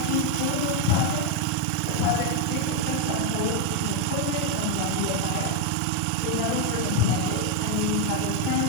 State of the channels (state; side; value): different; both; correlation 0.02